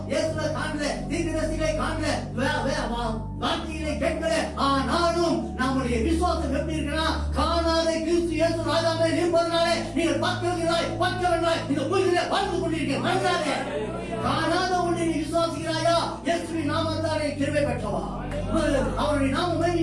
இயேசுவை காணல, தீர்க்கதரிசிகளை காணல, வார்த்தைகளை கேட்கல. ஆனாலும் நம்முடைய விசுவாசம் எப்படி இருக்குன்னா, காணாத கிறிஸ்து இயேசு ராஜாவே இருப்பதனாலே நீங்கள் பக்கவர்களாய் இந்த பூமியிலே வாழ்ந்து கொண்டிருக்கிறீங்க. காணாத ஒன்றை நீ விசுவாசிக்கிறாயா? இயேசுவின் நாமத்தாலே கிருபை பெற்றவா, அவருடைய நாம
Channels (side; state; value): both; identical; correlation 1.00